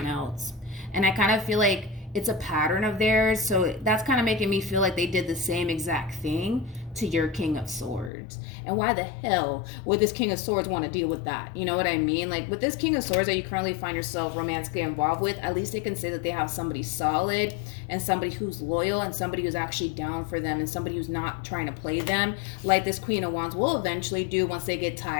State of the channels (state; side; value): drops out; right; at 8.1 s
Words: else. And I kind of feel like it's a pattern of theirs. So that's kind of making me feel like they did the same exact thing to your King of Swords. And why the hell would this King of Swords want to deal with that? You know what I mean? Like with this King of Swords that you currently find yourself romantically involved with, at least they can say that they have somebody solid and somebody who's loyal and somebody who's actually down for them and somebody who's not trying to play them like this Queen of Wands will eventually do once they get